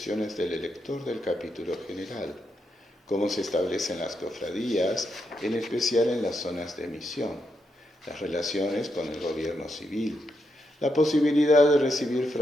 del elector del capítulo general, cómo se establecen las cofradías, en especial en las zonas de misión, las relaciones con el gobierno civil, la posibilidad de recibir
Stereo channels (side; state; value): both; normal; correlation 0.82